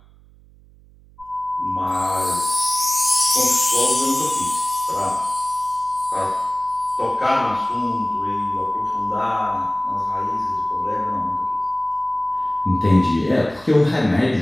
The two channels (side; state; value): right; noise; hum, 26 dB below the sound